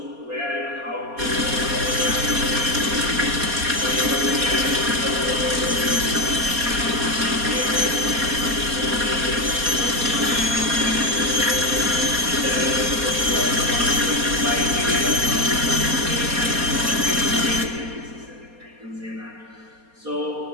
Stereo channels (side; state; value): left; late; 4.2 ms